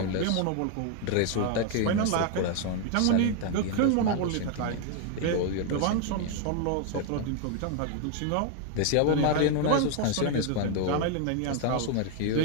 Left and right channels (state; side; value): different; both; correlation 0.00